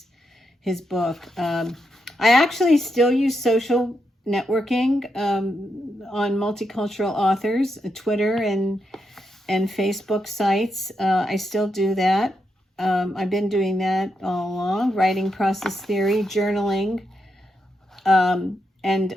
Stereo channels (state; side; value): normal; both; correlation 0.83